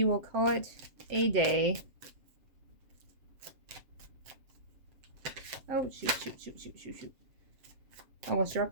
will call it a day. Oh, shoot. Almost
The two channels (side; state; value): left; late; 7.7 ms